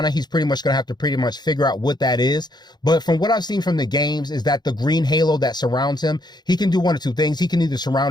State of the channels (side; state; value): right; late; 0.21 ms